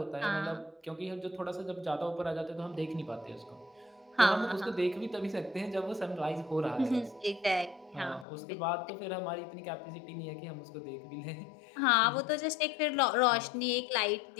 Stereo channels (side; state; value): right; drops out; at 8.2 s